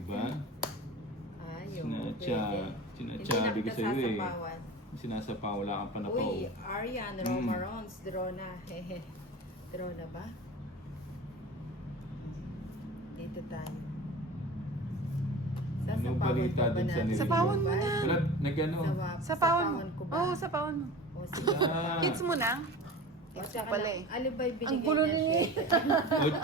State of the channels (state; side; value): normal; both; correlation 0.35